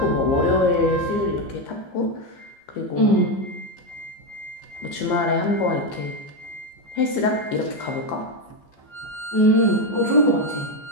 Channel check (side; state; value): right; late; 15 ms